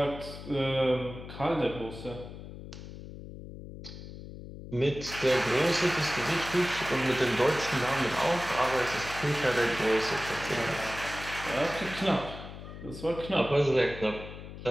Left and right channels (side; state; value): left; noise; hum, 12 dB below the sound